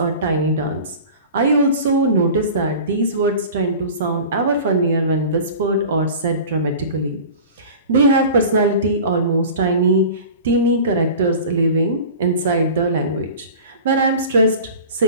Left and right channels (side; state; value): both; inverted; correlation -0.38